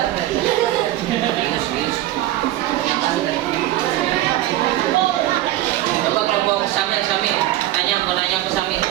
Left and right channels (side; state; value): left; quieter; 14.8 dB